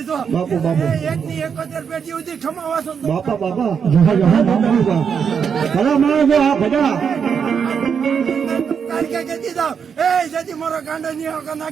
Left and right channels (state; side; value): quieter; left; 6.9 dB